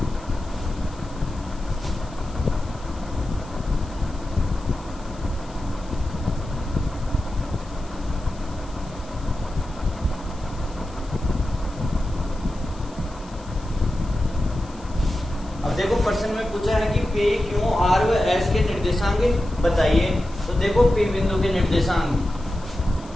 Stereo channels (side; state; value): left; noise; hiss, 24 dB below the sound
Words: अब देखो प्रश्न में पूछा है कि पी क्यू आर व एस के निर्देशांक बताइए। तो देखो पी बिंदु के निर्देशांक